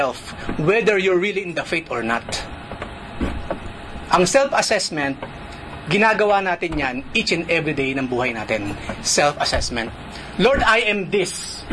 whether you're really in the faith or not. Ang self-assessment, ginagawa natin yan each and every day ng buhay natin. Self-assessment. Lord, I am this.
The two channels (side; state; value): both; identical; correlation 1.00